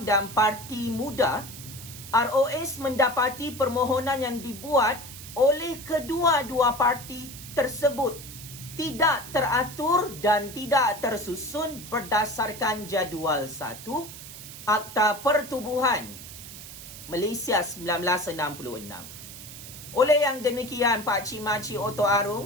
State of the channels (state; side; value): noise; right; hiss, 13 dB below the sound